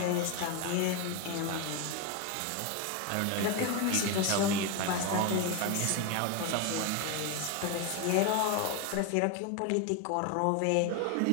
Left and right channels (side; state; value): both; different; correlation 0.02